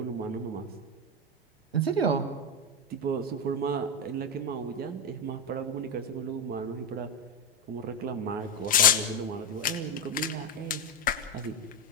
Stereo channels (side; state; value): both; normal; correlation 0.10